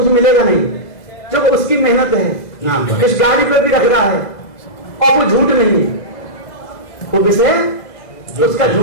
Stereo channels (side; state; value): right; late; 2.0 ms